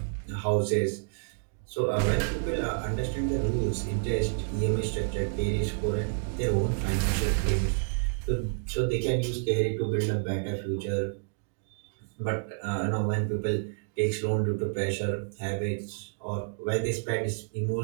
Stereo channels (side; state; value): left; silent; digital silence